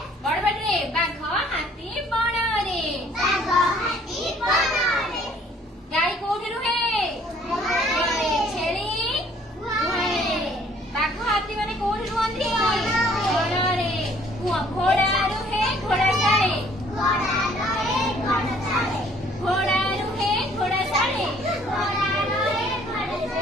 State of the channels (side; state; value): both; normal; correlation 0.59